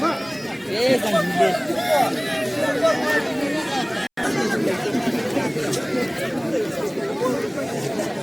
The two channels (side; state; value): both; identical; correlation 1.00